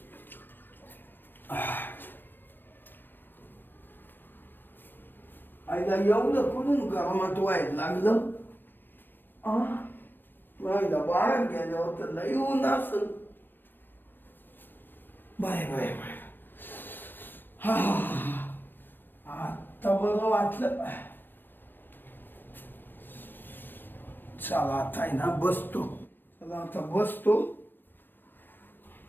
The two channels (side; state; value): right; late; 0.094 ms